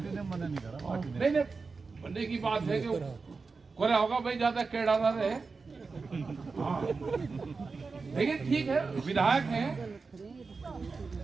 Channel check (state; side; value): quieter; left; 4.4 dB